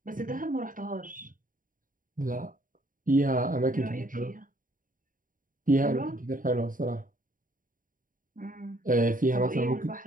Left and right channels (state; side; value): late; left; 0.39 ms